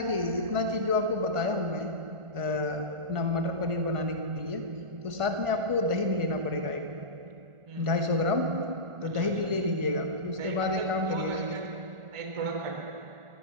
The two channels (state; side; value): late; left; 1.5 ms